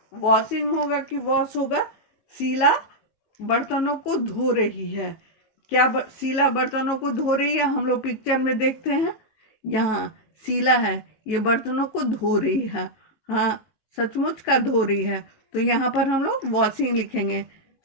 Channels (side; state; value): right; late; 18 ms